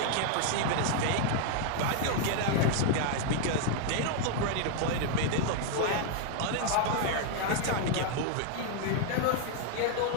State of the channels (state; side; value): different; both; correlation 0.00